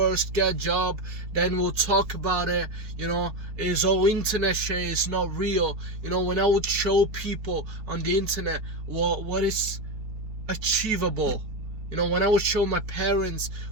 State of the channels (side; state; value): left; late; 4.5 ms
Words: get a job, then we'll talk about it, it's all internet shit, it's not real. When I would show people on the internet what is achievable, when I would show my parents